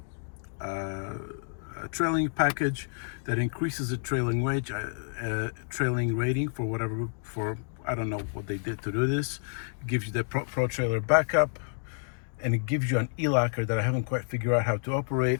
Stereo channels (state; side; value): silent; right; digital silence